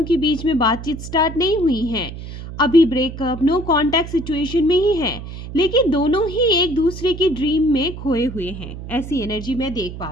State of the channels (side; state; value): right; noise; hum, 10 dB below the sound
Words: के बीच में बातचीत स्टार्ट नहीं हुई है। अभी ब्रेकअप, नो कॉन्टैक्ट सिचुएशन में ही है। लेकिन दोनों ही एक दूसरे की ड्रीम में खोए हुए हैं, ऐसी एनर्जी मैं देख पा